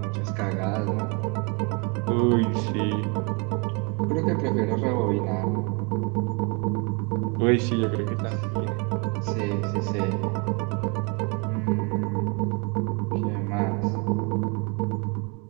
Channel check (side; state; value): left; quieter; 32.4 dB